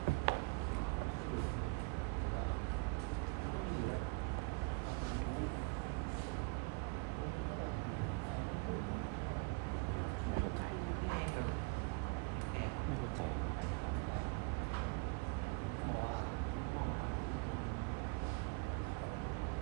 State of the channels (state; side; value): quieter; left; 30.8 dB